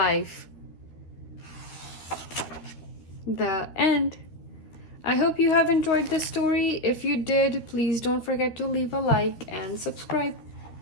The end. I hope you have enjoyed this story. If you did, please don't forget to leave a like and subscribe.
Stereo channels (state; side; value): late; right; 13 ms